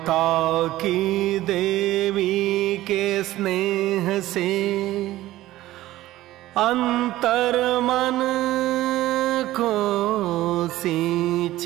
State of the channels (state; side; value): quieter; left; 15.8 dB